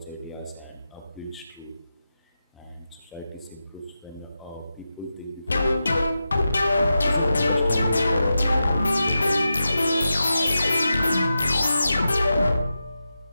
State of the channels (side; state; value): both; inverted; correlation -0.90